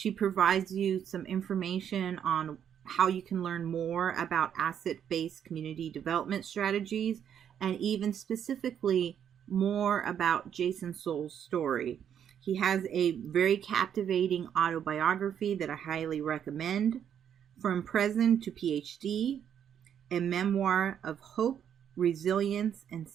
provides you some information on how you can learn more about asset-based community development strategies, and even specifically more about Jason Soule's story. He has a very captivating autobiography that I highly recommend, From Prison to PhD, a memoir of hope, resilience, and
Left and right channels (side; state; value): left; quieter; 8.9 dB